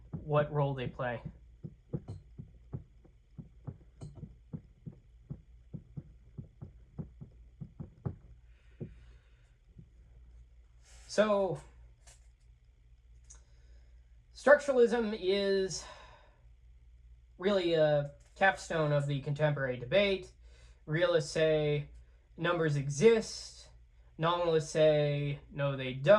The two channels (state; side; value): identical; both; correlation 1.00